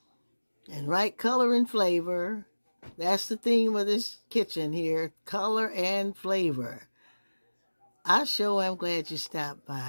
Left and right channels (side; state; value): both; inverted; correlation -1.00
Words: and write color and flavor. That's the theme of this kitchen here, color and flavor. I sure am glad you stopped